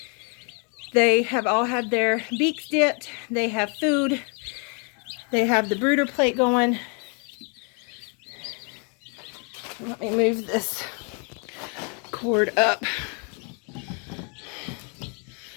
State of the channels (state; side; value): quieter; right; 37.3 dB